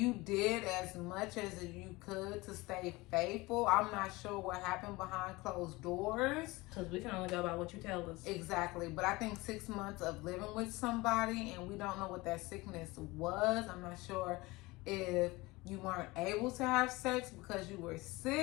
did as much as you could to stay faithful. I'm not sure what happened behind closed doors. Because we can only go by what you tell us. Exactly. But I think 6 months of living with somebody and we don't know what that sickness was. I'm not sure if you weren't able to have sex because you were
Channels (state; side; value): quieter; right; 22.0 dB